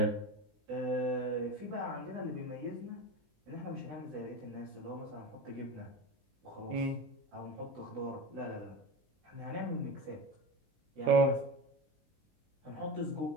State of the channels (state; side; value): late; left; 20 ms